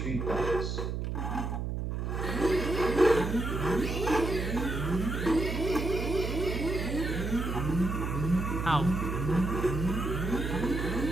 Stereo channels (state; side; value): noise; right; hum, 2 dB below the sound